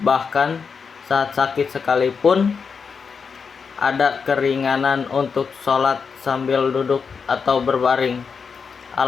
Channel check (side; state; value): right; quieter; 5.7 dB